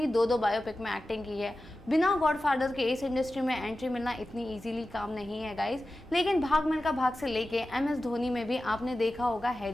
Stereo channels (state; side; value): normal; both; correlation 0.94